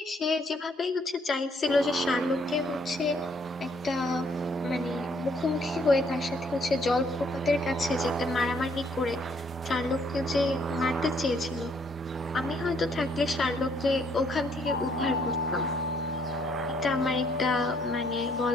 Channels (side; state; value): both; normal; correlation 0.67